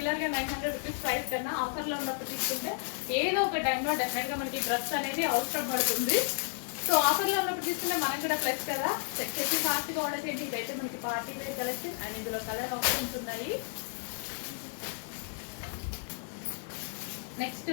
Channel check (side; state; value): right; silent; 56 dB below the other